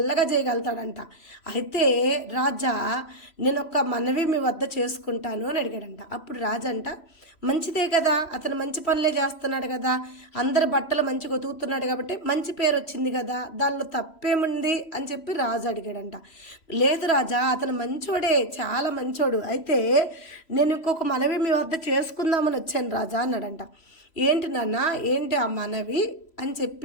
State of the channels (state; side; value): late; right; 3.1 ms